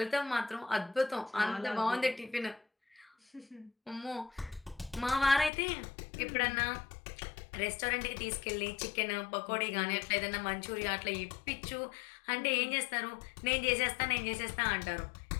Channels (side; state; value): right; drops out; at 5.5 s